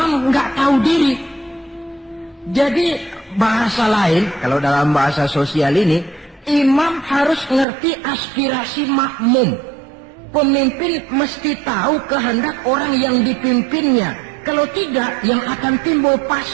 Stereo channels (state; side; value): drops out; left; at 7.7 s